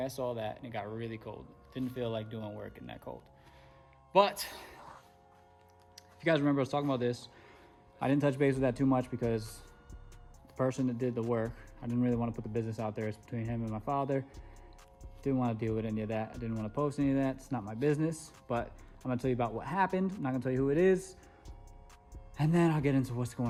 saw that, and it got really cold. Didn't feel like doing work in that cold. But, if you guys remember, I was talking about this. I didn't touch base with that too much because the person that did the work, I didn't really want to put the business out there. It's between him and my father. Didn't want to deal with any of that. I didn't want to post any of that. It's not my business. But I'm going to tell you about what happened. I'm not going to tell you who it is. And then I'll get into what's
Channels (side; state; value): both; identical; correlation 1.00